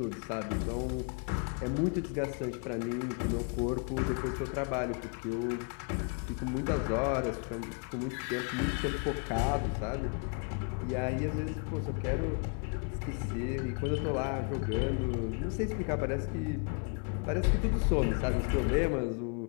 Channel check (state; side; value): quieter; right; 38.7 dB